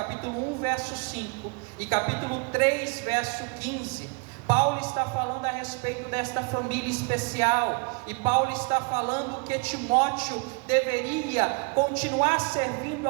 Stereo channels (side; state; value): left; quieter; 31.3 dB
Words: 1, verso 5 e capítulo 3, verso 15, Paulo está falando a respeito desta família especial, e Paulo está falando que Timóteo deveria continuar servindo